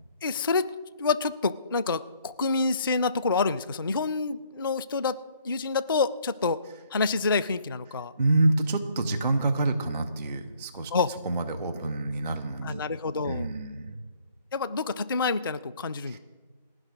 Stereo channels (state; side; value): inverted; both; correlation -0.62